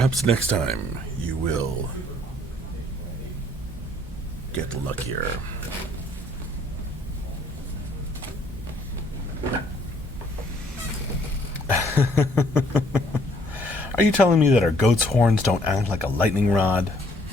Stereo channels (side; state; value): both; normal; correlation 0.63